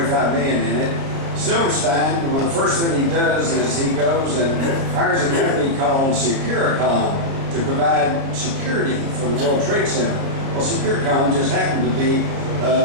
million in it. Silverstein, well, the first thing he does is he goes and hires a company called Securicom to provide security for the World Trade Center. Well, Securicom just happened to be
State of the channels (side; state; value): left; late; 30 ms